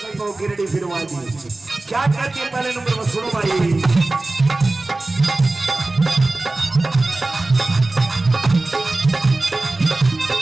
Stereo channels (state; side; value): quieter; left; 3.0 dB